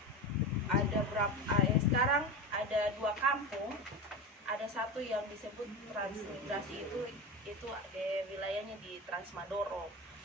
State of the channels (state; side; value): normal; both; correlation 0.23